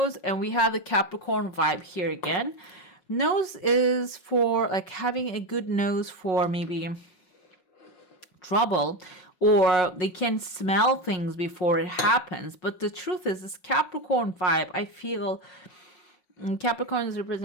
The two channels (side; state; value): right; late; 5.5 ms